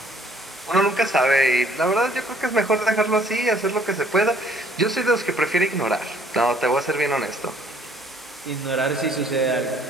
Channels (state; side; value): normal; both; correlation 0.61